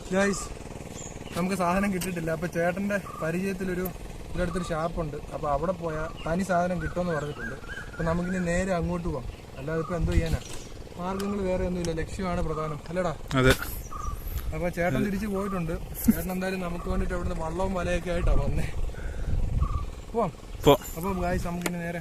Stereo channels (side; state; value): both; identical; correlation 1.00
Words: ഗൈസ് നമുക്ക് സാധനം കിട്ടിയിട്ടില്ല. അപ്പോൾ ചേട്ടൻ്റെ പരിചയത്തിലൊരു ഇവിടെ അടുത്തൊരു ഷാപ്പുണ്ട്. അപ്പോൾ അവിടെ പോയാൽ തനി സാധനം കിട്ടുമെന്ന് പറഞ്ഞിട്ടുണ്ട്. അപ്പോൾ നമുക്കിനി നേരെ അങ്ങോട്ട് പോകാം. അല്ലാതെ ഇപ്പോൾ എന്തോ ചെയ്യാനാ, മാർഗ്ഗങ്ങൾ വേറെ ഒന്നുമില്ല, ലക്ഷ്യമാണ് പ്രധാനം അല്ലേടാ. അതെ. അപ്പോൾ ചേട്ടൻ തിരിച്ച് പോയിട്ടുണ്ട്. ചേട്ടൻ എന്തായാലും നമുക്ക് വേണ്ടിയിട്ട് അവിടുന്ന് വള്ളവും വലയൊക്കെ ആയിട്ടാണ് വന്നേ. പോവാം. അപ്പോൾ ഗൈസ് നമുക്കിനി നേരെ